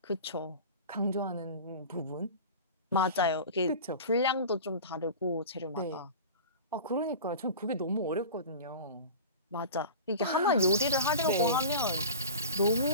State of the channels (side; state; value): both; inverted; correlation -0.35